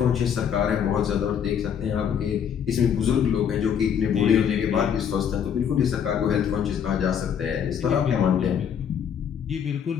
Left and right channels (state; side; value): quieter; right; 8.2 dB